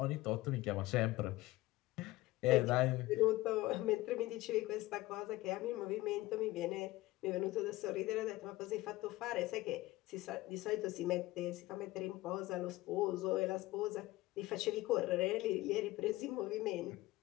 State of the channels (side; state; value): right; quieter; 18.3 dB